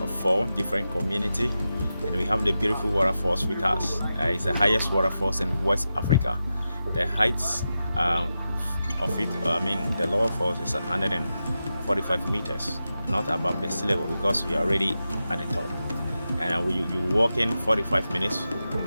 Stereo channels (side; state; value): both; inverted; correlation -0.90